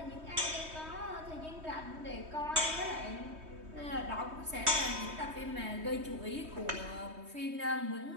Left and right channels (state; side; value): late; left; 3.2 ms